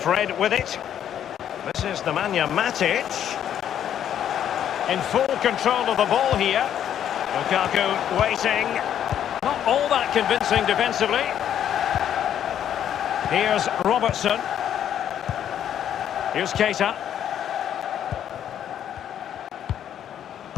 with it. This is Nemanja Matic. In full control of the ball here. Lukaku waiting. Not all that convincing defensively. Here's Robertson. Here's Keita.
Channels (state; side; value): quieter; right; 10.0 dB